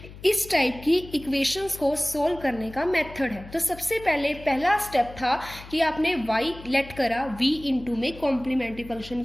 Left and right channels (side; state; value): left; noise; hum, 17 dB below the sound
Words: इस टाइप की इक्वेशंस को सोल्व करने का मेथड है। तो सबसे पहले पहला स्टेप था कि आपने y लेट करा v इंटू में कॉम्प्लीमेंट्री फंक्शन